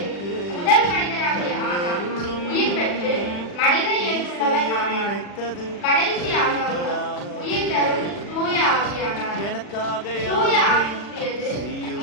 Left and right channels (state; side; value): late; right; 40 ms